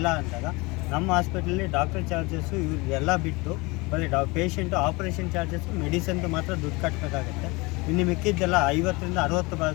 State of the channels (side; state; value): right; quieter; 25.1 dB